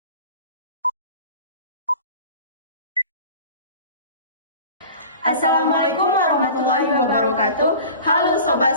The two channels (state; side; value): inverted; both; correlation -0.40